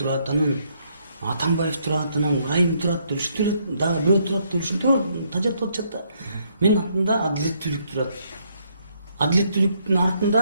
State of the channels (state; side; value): inverted; both; correlation -0.71